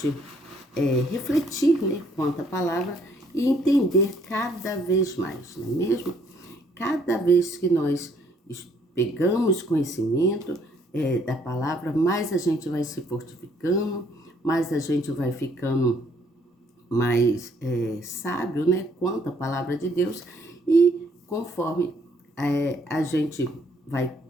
refletir, né, quanto à palavra e entender cada vez mais, não é mesmo? Cada vez que nós pegamos conhecimento da palavra, mais a gente vai se fortificando, mais a gente vai ficando mais sábio, né, quanto à palavra de Deus, e conforme a gente vai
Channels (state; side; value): normal; both; correlation 0.65